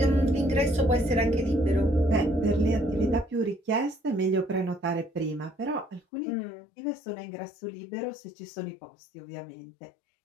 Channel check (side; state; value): right; drops out; at 6.0 s